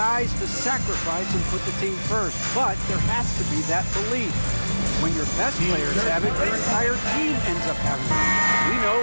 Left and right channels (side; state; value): both; inverted; correlation -1.00